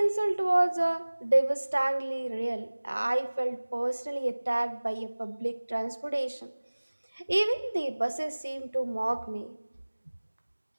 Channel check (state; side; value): inverted; both; correlation -1.00